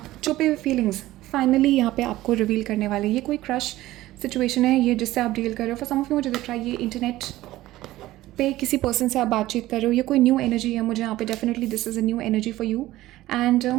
छुपे हुए फीलिंग्स फाइनली यहाँ पे आपको रिवील करने वाले। ये कोई क्रश सिचुएशन है ये जिससे आप डील कर रहे हो। फॉर सम ऑफ यू मुझे दिख रहा है ये इंटरनेट पे किसी पर्सन से आप बातचीत कर रहे हो, ये कोई न्यू एनर्जी है मुझे यहाँ पे, definitely this is a new energy for you. And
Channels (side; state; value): left; quieter; 16.2 dB